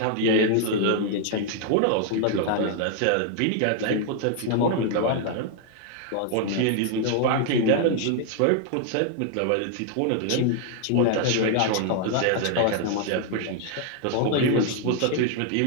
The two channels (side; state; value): both; different; correlation 0.00